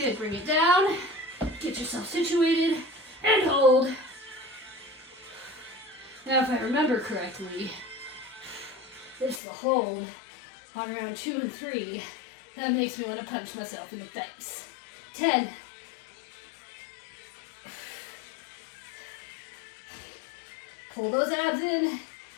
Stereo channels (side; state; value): right; drops out; at 9.4 s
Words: bring it down. Get yourself situated and hold. Now if I remember correctly, It's the hold on round 2 and 3 that makes me want to punch myself in the face. 10. Pull those abs in.